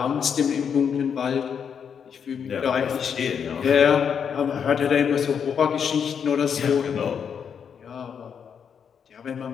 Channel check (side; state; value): right; quieter; 7.3 dB